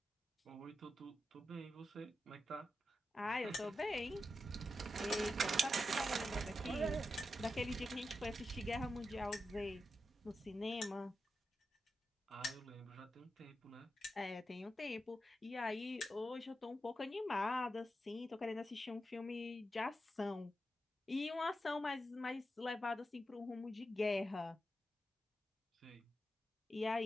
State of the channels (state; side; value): normal; both; correlation 0.89